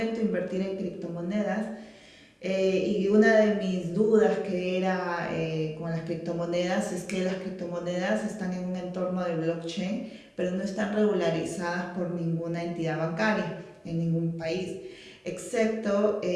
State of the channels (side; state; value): both; identical; correlation 1.00